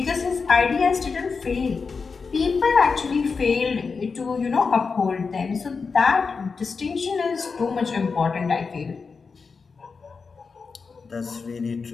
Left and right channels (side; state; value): right; quieter; 4.9 dB